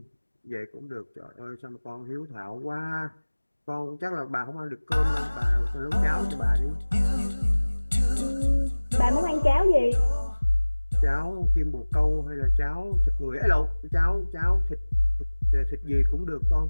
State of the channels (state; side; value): inverted; both; correlation -1.00